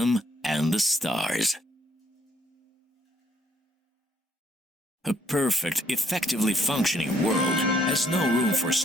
and the stars. A perfect, effectively functioning world has no room for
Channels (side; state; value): both; normal; correlation 0.68